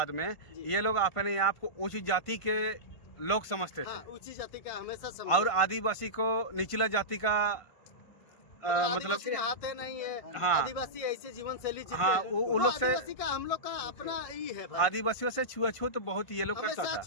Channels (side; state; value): right; late; 1.5 ms